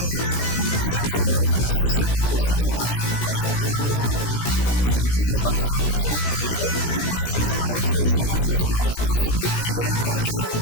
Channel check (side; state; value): right; late; 17 ms